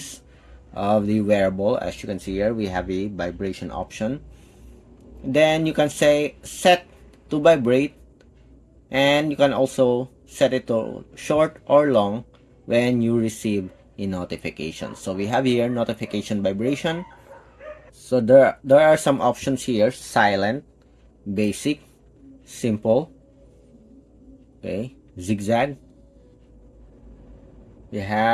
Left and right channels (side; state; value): both; identical; correlation 1.00